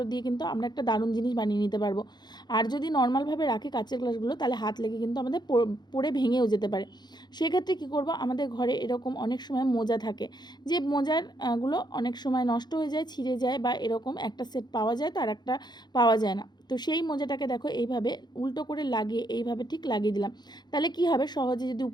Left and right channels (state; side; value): late; right; 0.21 ms